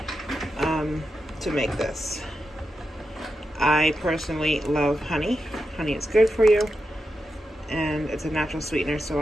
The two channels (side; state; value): both; normal; correlation 0.88